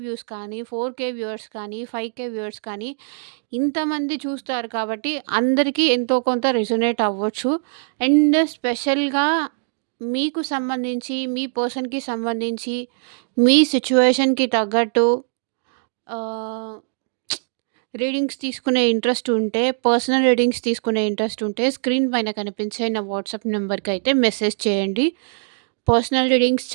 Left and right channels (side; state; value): left; silent; digital silence